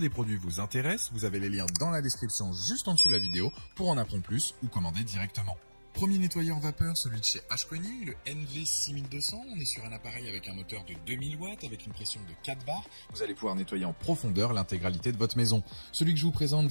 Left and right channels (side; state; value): both; inverted; correlation -1.00